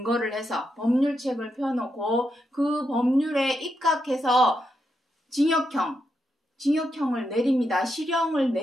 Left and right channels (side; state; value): both; normal; correlation 0.83